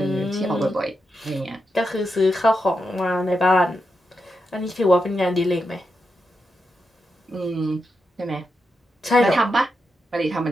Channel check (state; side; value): normal; both; correlation 0.86